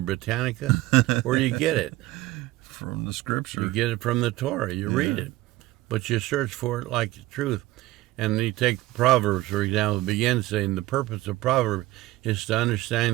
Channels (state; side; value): quieter; left; 17.6 dB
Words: Britannica? Where do you get it? From the Scripture. You get it from the Torah. You read it. But you search for it like the truth. And you take Proverbs, for example, it begins saying the purpose of Proverbs is to